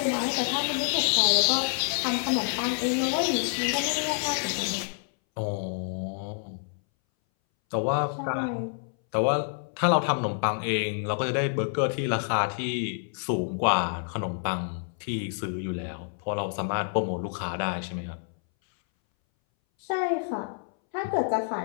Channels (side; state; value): right; silent; 59 dB below the other